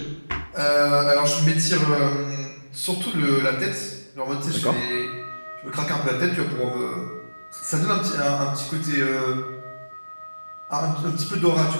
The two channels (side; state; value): both; inverted; correlation -1.00